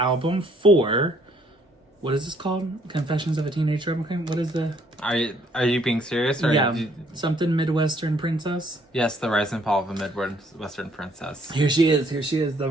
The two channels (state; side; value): normal; both; correlation 0.64